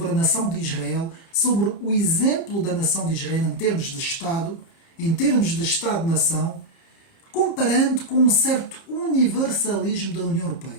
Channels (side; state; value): right; late; 30 ms